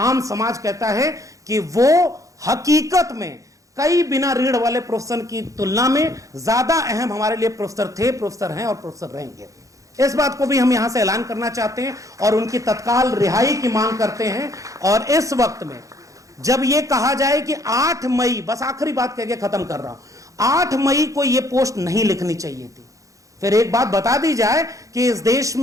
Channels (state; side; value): late; left; 0.16 ms